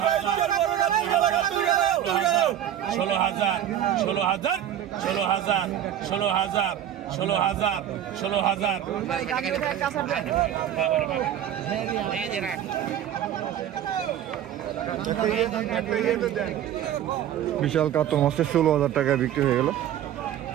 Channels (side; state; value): left; quieter; 10.7 dB